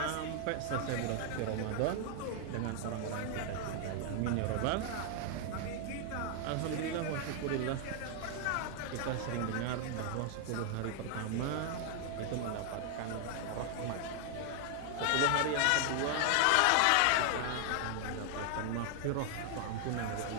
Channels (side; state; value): both; different; correlation 0.00